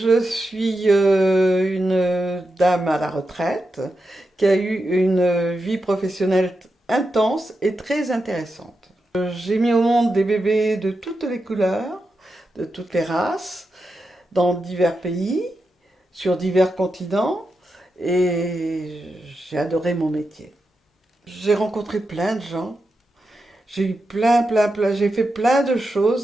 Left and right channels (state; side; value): normal; both; correlation 0.88